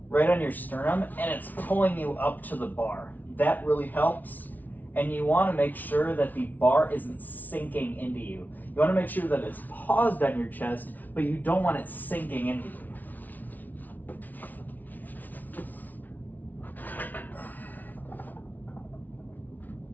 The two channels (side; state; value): right; late; 0.080 ms